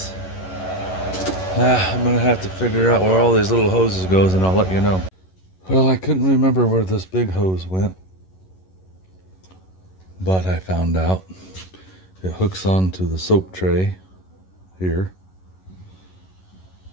I'm going to have to figure out where all these little hoses goes, and I'll let you know. Well, I couldn't remember where this big hose went. But I found out. It hooks onto the soap tray here.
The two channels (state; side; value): late; right; 11 ms